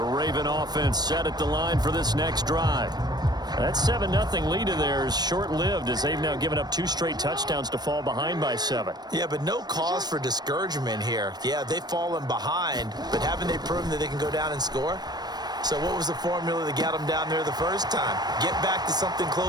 Raven offense set at the line for this next drive. That 7-0 lead of theirs is short-lived as they've now given up 2 straight touchdowns to fall behind by 7. Yeah, but no cause for discouragement here. Yeah, they've fallen behind, but haven't they proven that they can go down and score? So what was the formula that got them down there the first time? Get back to something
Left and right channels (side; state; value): left; late; 0.19 ms